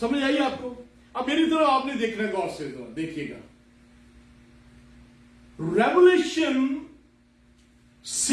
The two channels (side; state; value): both; identical; correlation 1.00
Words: آئیے آپ کو؟ اب میری طرح آپ نے دیکھنا ہے غور سے, دیکھیے گا. Revelation